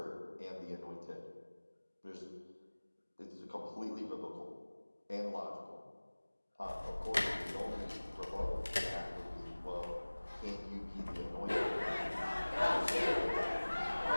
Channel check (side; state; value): both; inverted; correlation -1.00